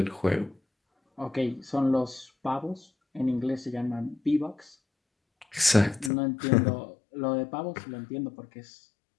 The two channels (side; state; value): right; drops out; at 6.1 s